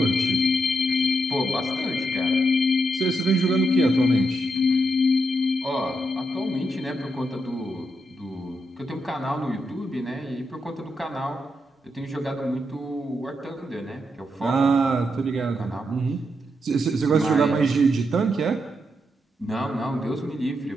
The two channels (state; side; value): normal; both; correlation 0.82